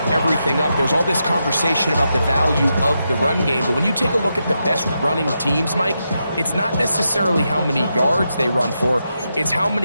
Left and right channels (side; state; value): both; inverted; correlation -0.86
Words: everything up. There's all this conversation about the value of the run game, but when you take a look at the best running teams, Mike, it's not necessarily how many yards they run for, it's how